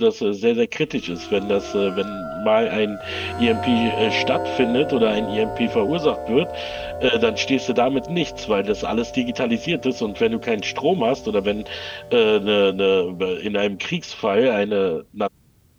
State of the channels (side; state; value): both; identical; correlation 1.00